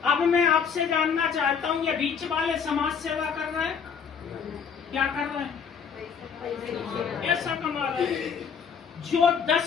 अब मैं आपसे जानना चाहता हूं, ये बीच वाले समाज सेवा कर रहे हैं? क्या कर रहे हैं? ऐसा कमा रहे हैं। जो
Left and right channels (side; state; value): right; quieter; 6.7 dB